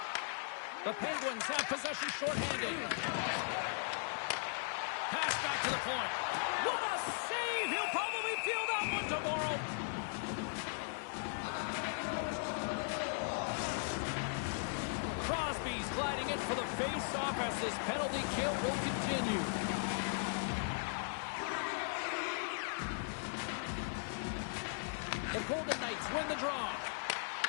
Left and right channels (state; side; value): silent; right; 52 dB below the other